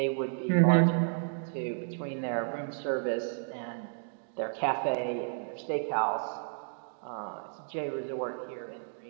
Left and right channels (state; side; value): silent; left; digital silence